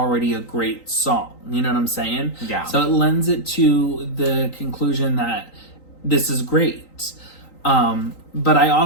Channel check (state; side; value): late; right; 3.9 ms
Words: a great song. You know what I'm saying? Yeah. So it lends it to the conclusion that this is great. But I